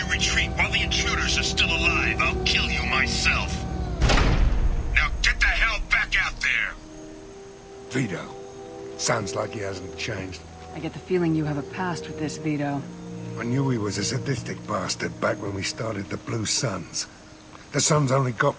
retreat while the intruders are still alive, I'll kill you myself. Now get the hell back out there! Vito. Sounds like he hasn't changed. I get the feeling you have a past with this, Vito. I knew he was a sadistic bastard back when we started the Blue Suns. The Suns only got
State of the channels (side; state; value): both; identical; correlation 1.00